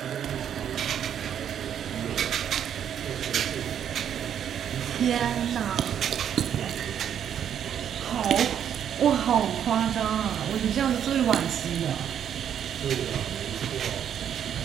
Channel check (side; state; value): left; quieter; 9.2 dB